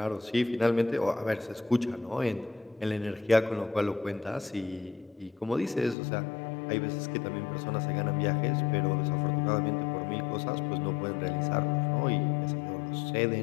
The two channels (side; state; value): right; drops out; at 6.0 s